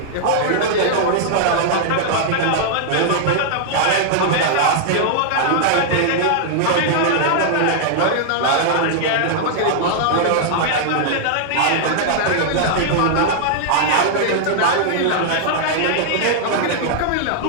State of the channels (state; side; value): different; both; correlation -0.01